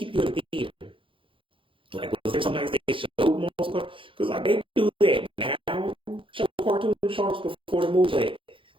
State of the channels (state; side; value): late; left; 0.25 ms